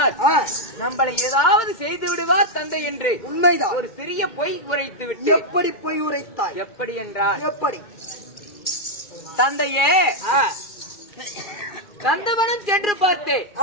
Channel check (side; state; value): right; late; 2.3 ms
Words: நம்மளை ஏதாவது செய்து விடுவார் தந்தை என்று. உண்மைதான். ஒரு சிறிய பொய் உரைத்து விட்டு. எப்படி பொய் உரைத்தாய்? எப்படி என்றால், எப்படி? தந்தையே, கந்தவனம் சென்று பார்த்தேன்,